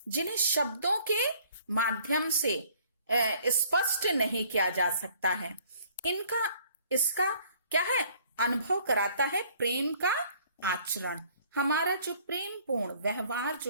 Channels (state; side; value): inverted; both; correlation -0.58